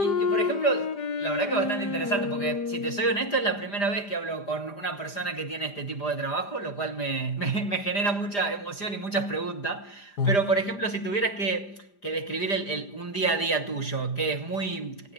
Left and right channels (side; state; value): right; late; 4.9 ms